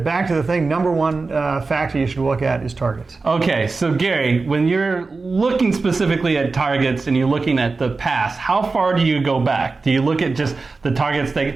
thing, number one factor you should look at is targets. Okay, so Gary, when you're looking specifically at targets and you're looking at the past, how far do you go back? Do you look at just the targets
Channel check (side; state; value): left; quieter; 4.0 dB